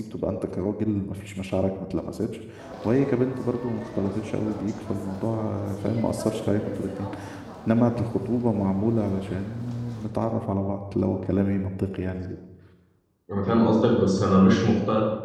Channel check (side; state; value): both; identical; correlation 1.00